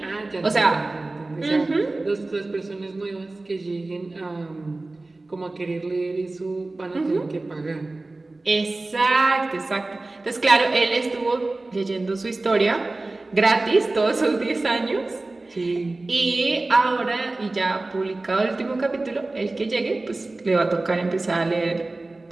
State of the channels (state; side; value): quieter; left; 3.1 dB